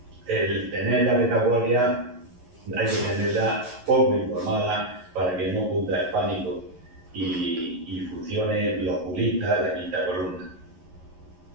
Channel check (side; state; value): left; late; 11 ms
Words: el tener la retaguardia, hay que tenerla poco informada para que no cunda el pánico y funcione los oculistas de la quinta columna.